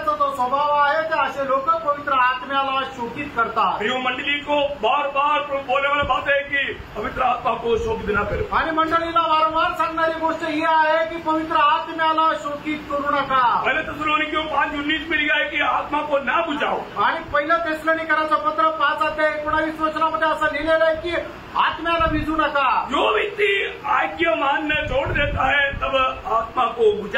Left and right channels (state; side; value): identical; both; correlation 1.00